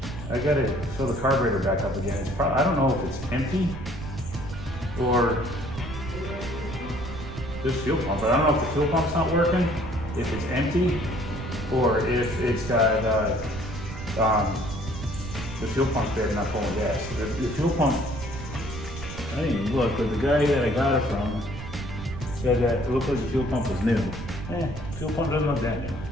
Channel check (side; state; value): right; noise; rumble, 10 dB below the sound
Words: gotta fill the carburetor back up again. It's I don't know if it's empty or this fuel pump, but I don't know if the fuel pump's not working, if it's empty, or if it's got the fuel pump's bad, not pulling gas. The fuel pump, I didn't even look, but the guy that I got it from said that it looked like the fuel pump was new. Fuel pump doesn't look that new.